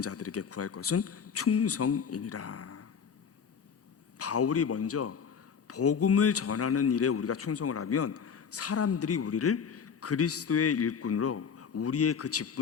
자들에게 구할 것은 충성이니라. 바울이 먼저 복음을 전하는 일에 우리가 충성을 하면 사람들이 우리를 그리스도의 일꾼으로 우리의 그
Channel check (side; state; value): right; quieter; 6.7 dB